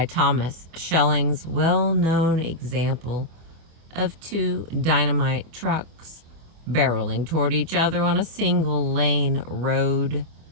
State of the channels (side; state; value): left; late; 25 ms